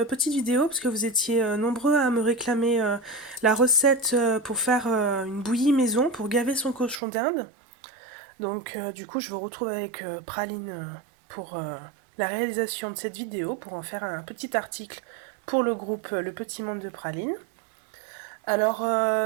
petite vidéo parce que vous étiez nombreux à me réclamer la recette pour faire une bouillie maison pour gaver son cochon d'Inde. Donc du coup je vous retrouve avec Praline pour la réalisation de cette vidéo pour en faire un petit article pour le groupe Le Petit Monde de Praline. Alors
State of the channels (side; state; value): left; drops out; at 7.0 s